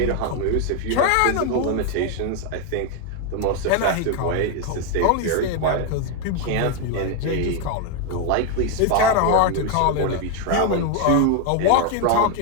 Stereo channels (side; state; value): both; different; correlation 0.01